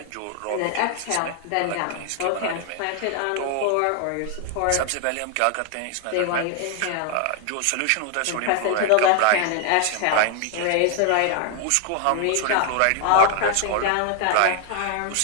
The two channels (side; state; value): both; different; correlation 0.00